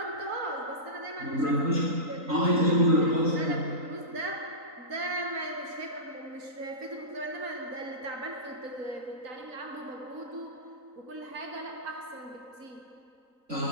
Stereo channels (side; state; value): left; late; 3.9 ms